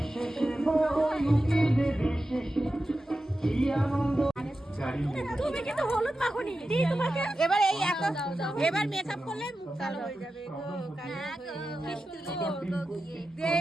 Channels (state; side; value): normal; both; correlation 0.92